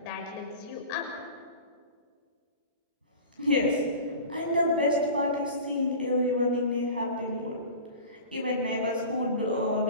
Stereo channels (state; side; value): inverted; both; correlation -0.35